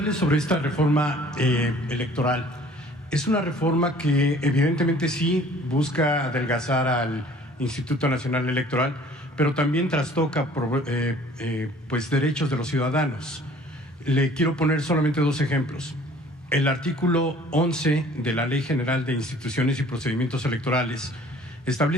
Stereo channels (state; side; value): normal; both; correlation 0.52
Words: sobre esta reforma electoral. Es una reforma que evidentemente sí busca adelgazar al Instituto Nacional Electoral, pero también trastoca pues derechos de los ciudadanos. Le quiero poner solamente dos ejemplos. El artículo 11 de la Ley General de Instituciones y Procedimientos Electorales